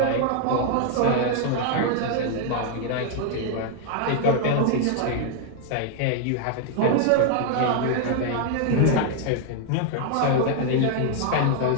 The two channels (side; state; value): both; different; correlation 0.00